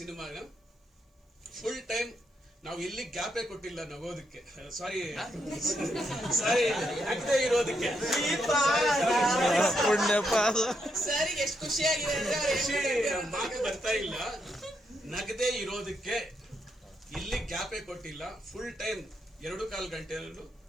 ಫುಲ್ ಟೈಮ್ ನಾವು ಎಲ್ಲಿ ಗ್ಯಾಪೇ ಕೊಟ್ಟಿಲ್ಲ ನಗೋದಕ್ಕೆ, ಸಾರಿ ನಗದೆ ಇರೋದಕ್ಕೆ. ಮಾತು ಬರ್ತಾ ಇಲ್ಲ, ನಗದೆ ಇರೋದಕ್ಕೆ ಇಲ್ಲಿ ಗ್ಯಾಪೇ ಕೊಟ್ಟಿಲ್ಲ. ಫುಲ್ ಟೈಮ್ 2.25 ಗಂಟೆಯಲ್ಲೂ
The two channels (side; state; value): both; normal; correlation 0.79